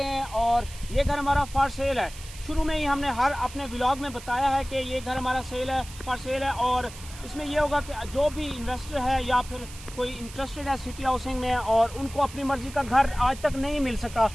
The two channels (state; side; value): noise; right; hiss, 16 dB below the sound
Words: हैं और ये घर हमारा फॉर सेल है। शुरू में ही हमने हर अपने व्लॉग में बताया है कि ये घर हमारा सेल है, फॉर सेल है। और इसमें यह होगा कि जो भी इन्वेस्टर है या फिर कोई इंटरेस्टेड है सिटी हाउसिंग में और उनको अपनी मर्ज़ी का घर आज तक नहीं मिल सका,